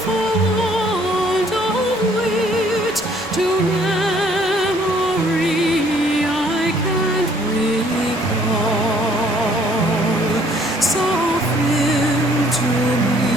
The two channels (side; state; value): both; normal; correlation 0.61